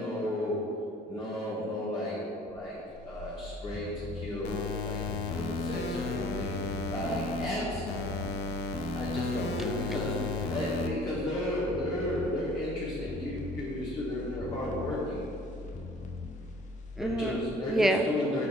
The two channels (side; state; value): both; normal; correlation 0.52